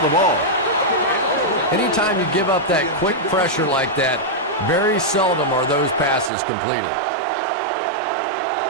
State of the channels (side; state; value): left; drops out; at 6.3 s